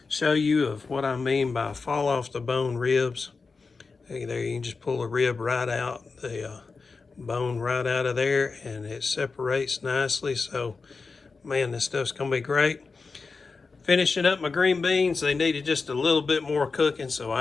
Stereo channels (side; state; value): right; quieter; 4.4 dB